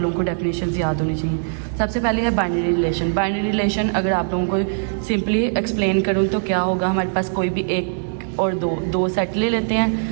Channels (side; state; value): left; silent; digital silence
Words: को डेफिनेशन याद होनी चाहिए। सबसे पहले है बाइनरी रिलेशन। बाइनरी रिलेशन अगर आप लोगों को सिंपली एक्सप्लेन करूँ तो क्या होगा, हमारे पास कोई भी एक और दो सेट ले लेते